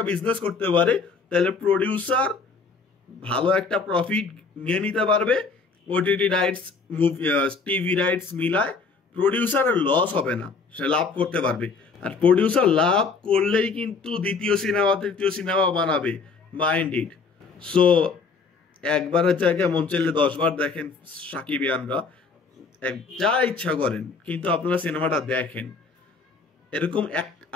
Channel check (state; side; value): quieter; right; 4.5 dB